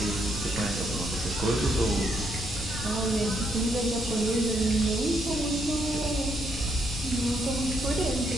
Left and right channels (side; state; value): left; noise; rumble, 10 dB below the sound